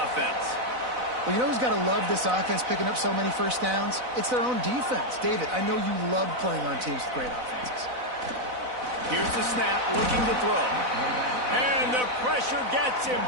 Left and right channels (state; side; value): late; left; 4.0 ms